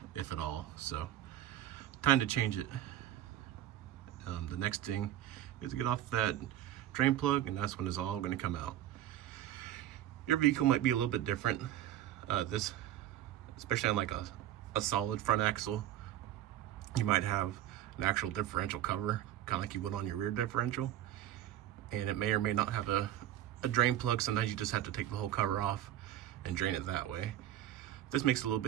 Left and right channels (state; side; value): quieter; left; 12.3 dB